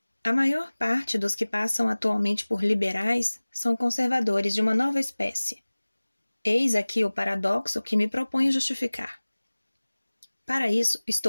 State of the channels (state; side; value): inverted; both; correlation -1.00